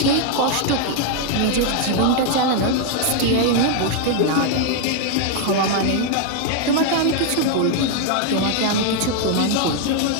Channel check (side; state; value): both; different; correlation 0.00